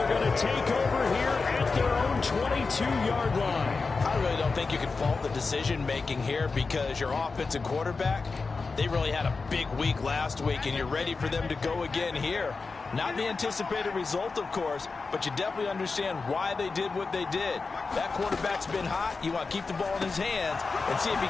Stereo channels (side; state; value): right; quieter; 4.3 dB